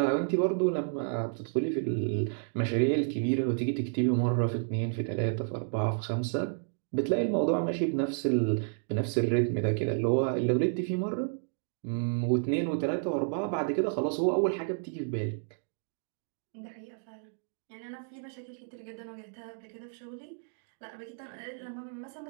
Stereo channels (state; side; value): silent; left; digital silence